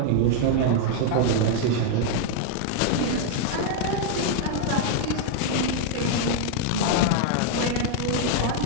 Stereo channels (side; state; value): both; different; correlation 0.00